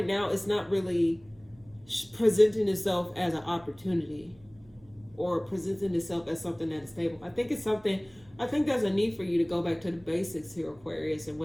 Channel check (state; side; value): noise; right; hum, 28 dB below the sound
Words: now it's not really presenting itself as an opportunity or presenting itself as something that is stable. I think it's something, I think there's a need for you to go back to the basics here, Aquarius, and